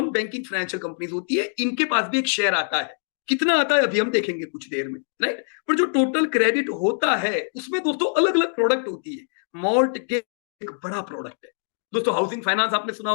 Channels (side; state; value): right; silent; digital silence